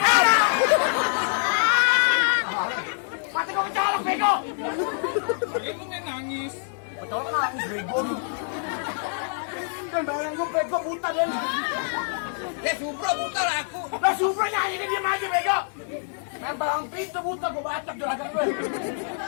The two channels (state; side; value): silent; right; 61 dB below the other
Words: Mati kau kecolok, bego. Bagi lu nangis. Kecolok nangis, bego. Dan bayang gue bego buta dan. Supro buta lah aku. Lah Supra nyanyi ini diam aja, bego. Main balang pintu buta, gue bacok juragan gue.